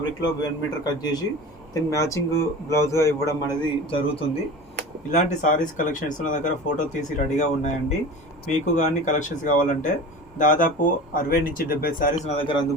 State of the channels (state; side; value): normal; both; correlation 0.35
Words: 1 మీటర్ కట్ చేసి దీన్ని మ్యాచింగ్ బ్లౌజ్గా ఇవ్వడం అనేది జరుగుతుంది. ఇలాంటి సారీస్ కలెక్షన్స్ నా దగ్గర ఫోటో తీసి రెడీగా ఉన్నాయండి. మీకు కానీ కలెక్షన్స్ కావాలంటే దాదాపు 60 నుంచి 70 సారీస్ నా దగ్గర